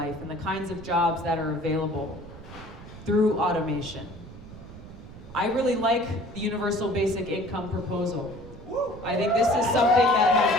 and the kinds of jobs that are available through automation. I really like the universal basic income proposal. I think this is something that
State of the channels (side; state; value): right; noise; rumble, 16 dB below the sound